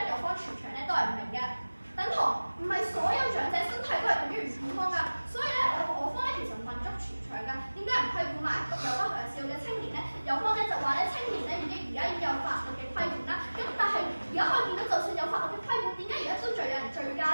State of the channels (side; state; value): both; inverted; correlation -1.00